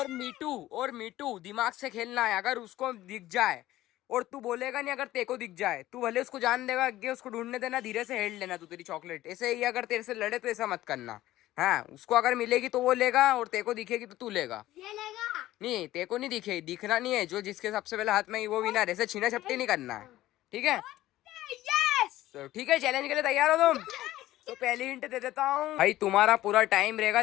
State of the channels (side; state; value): right; quieter; 15.3 dB